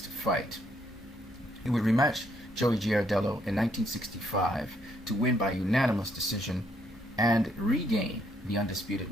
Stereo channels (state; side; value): noise; right; hum, 25 dB below the sound